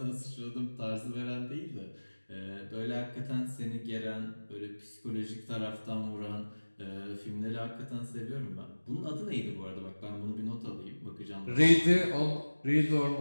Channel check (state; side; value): inverted; both; correlation -1.00